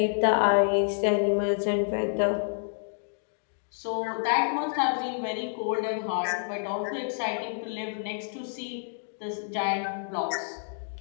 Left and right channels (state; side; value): silent; right; digital silence